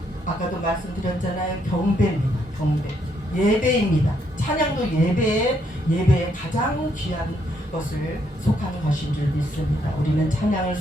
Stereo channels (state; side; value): normal; both; correlation 0.73